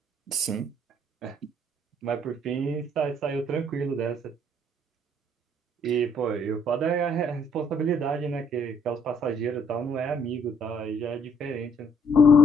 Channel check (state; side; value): normal; both; correlation 0.66